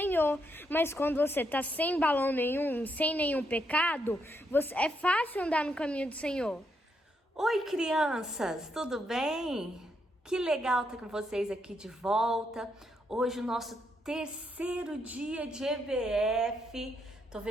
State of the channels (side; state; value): both; normal; correlation 0.78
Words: Mas quando você tá sem balão nenhum, sem nenhum pecado, é fácil andar no caminho do Senhor. Oi, crianças, tudo bem? Que legal estar com vocês aqui de volta. Hoje o nosso terceiro dia de EBF. Tô